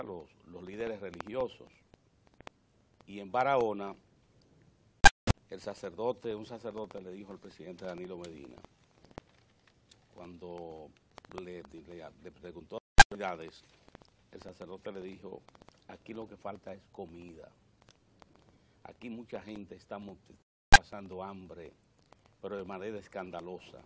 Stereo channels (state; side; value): identical; both; correlation 1.00